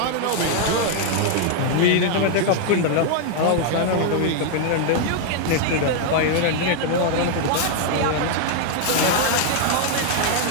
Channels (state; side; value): different; both; correlation 0.00